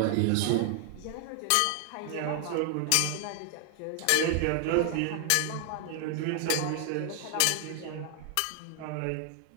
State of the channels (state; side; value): different; both; correlation 0.00